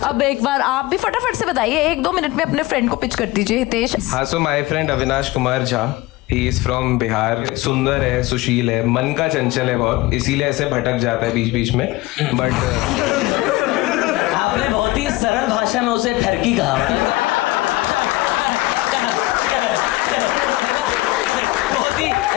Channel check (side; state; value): right; quieter; 19.7 dB